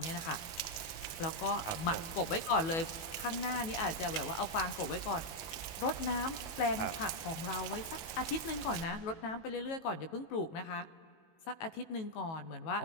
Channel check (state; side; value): late; right; 18 ms